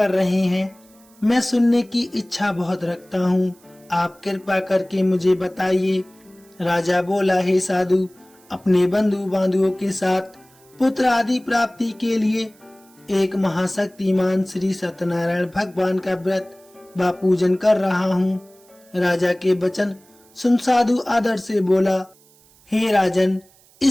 रहे हैं? मैं सुनने की इच्छा बहुत रखता हूँ, आप कृपा करके मुझे बताइए। राजा बोला, हे साधु, अपने बंधु बांधवों के साथ पुत्र आदि प्राप्ति के लिए एक महाशक्तिमान श्री सत्यनारायण भगवान का व्रत व पूजन कर रहा हूँ। राजा के वचन सुन साधु आदर से बोला, हे राजन,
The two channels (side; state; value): right; noise; hiss, 29 dB below the sound